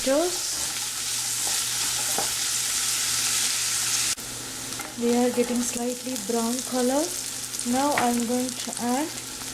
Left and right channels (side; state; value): both; identical; correlation 1.00